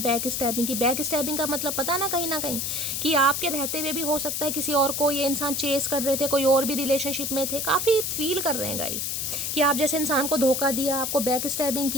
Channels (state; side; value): noise; left; hiss, 1 dB below the sound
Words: स्टैबिंग की। बैक स्टैबिंग का मतलब पता ना कहीं कि आपके रहते हुए भी हो सकता है किसी और को ये इंसान चेस कर रहे थे, कोई और भी रिलेशनशिप में थे। काफ़ी फील कर रहे हैं गाइस कि आप जैसे इंसान को धोखा दिया, आपको बैक स्टैबिंग